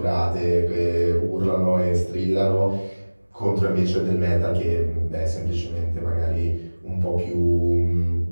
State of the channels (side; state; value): both; inverted; correlation -1.00